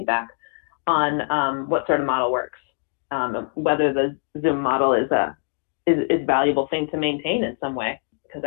on what sort of model works, whether the Zoom model is a valuable thing to maintain in some way, because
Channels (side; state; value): right; silent; 63 dB below the other